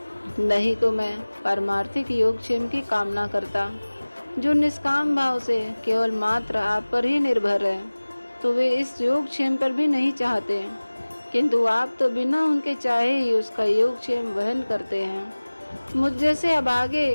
नहीं तो मैं पारमार्थिक योगक्षेम की कामना करता। जो निष्काम भाव से केवल मात्र आप पर ही निर्भर है, तो वे इस योगक्षेम पर भी नहीं चाहते, किंतु आप तो बिना उनके चाहे ही उसका योगक्षेम वहन करते हैं। मुझ जैसे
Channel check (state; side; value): inverted; both; correlation -1.00